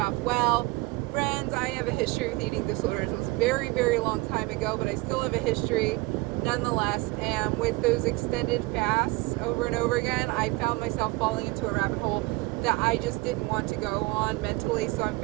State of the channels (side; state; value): left; quieter; 22.5 dB